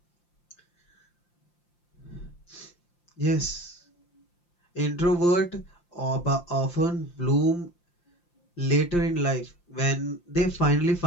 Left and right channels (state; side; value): late; right; 5.8 ms